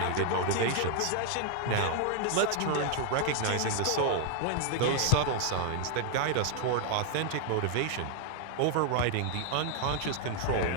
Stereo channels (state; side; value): different; both; correlation 0.00